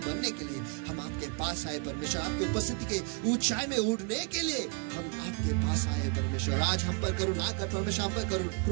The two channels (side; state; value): left; quieter; 32.7 dB